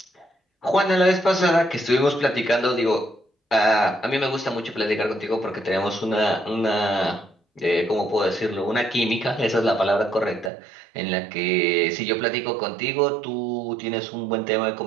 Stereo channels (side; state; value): left; drops out; at 10.5 s